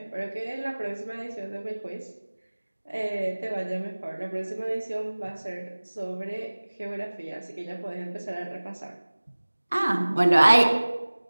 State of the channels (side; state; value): both; inverted; correlation -1.00